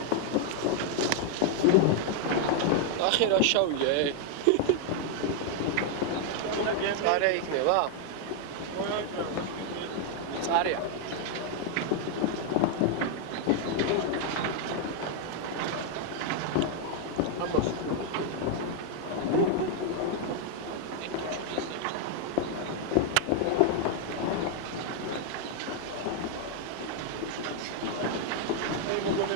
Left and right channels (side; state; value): both; different; correlation 0.00